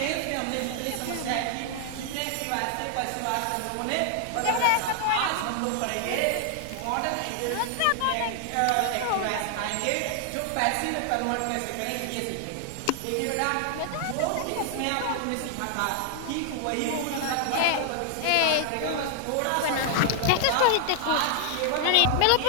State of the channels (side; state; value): both; different; correlation 0.00